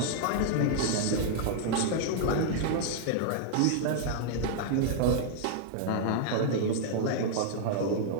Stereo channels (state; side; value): different; both; correlation -0.01